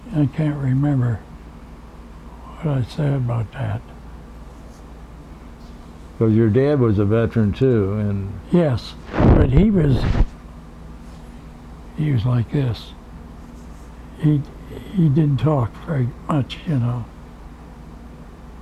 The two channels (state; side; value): identical; both; correlation 1.00